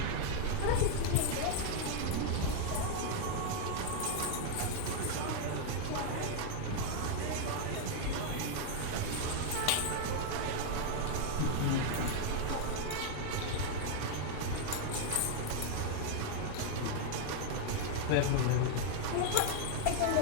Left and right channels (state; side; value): different; both; correlation 0.00